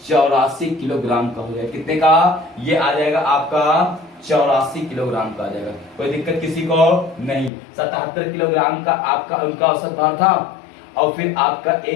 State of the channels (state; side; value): drops out; right; at 7.5 s